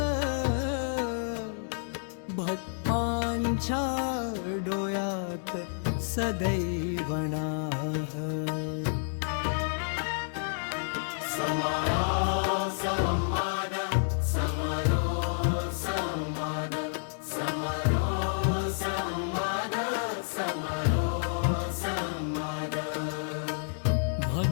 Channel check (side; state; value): right; silent; digital silence